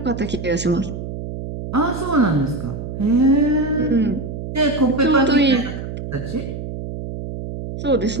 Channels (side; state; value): right; noise; hum, 7 dB below the sound